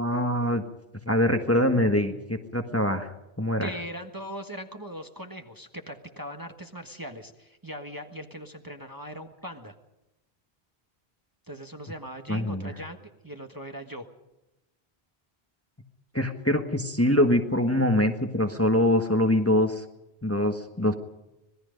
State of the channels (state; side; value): normal; both; correlation 0.27